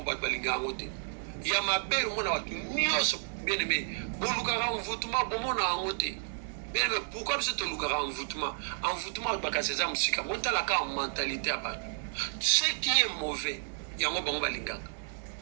y a ma belle, bien aimé, bien aimé, pourquoi c'est un envoûtement? Envoûtement, c'est la mentalité. Ce qui est mauvais, il y a un bon balingaka.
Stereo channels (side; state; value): left; silent; 57 dB below the other